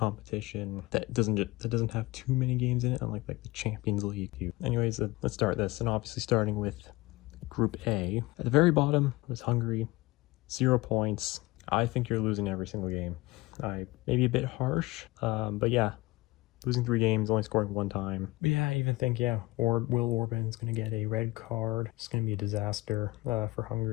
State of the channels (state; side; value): quieter; right; 20.8 dB